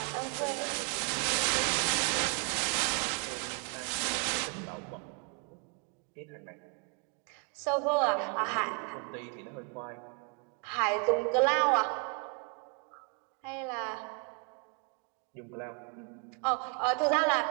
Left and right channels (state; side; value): quieter; left; 36.9 dB